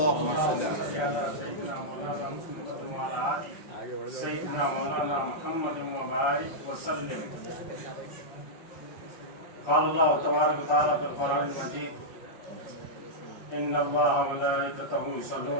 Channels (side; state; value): right; late; 5.7 ms